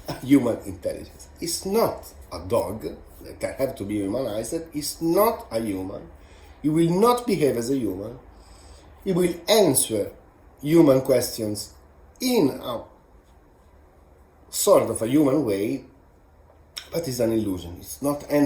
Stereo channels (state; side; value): identical; both; correlation 1.00